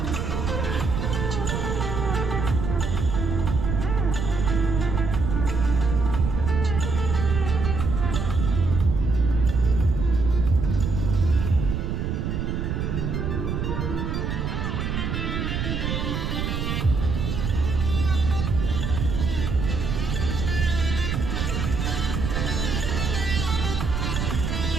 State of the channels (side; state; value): right; noise; rumble, 2 dB below the sound